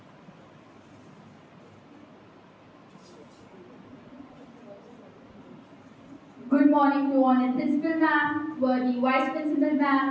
Good morning to Honored Principal Ma'am, worthy Vice Principal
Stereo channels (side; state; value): both; identical; correlation 1.00